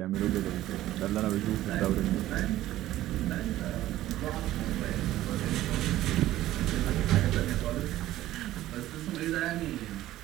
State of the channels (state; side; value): quieter; left; 14.6 dB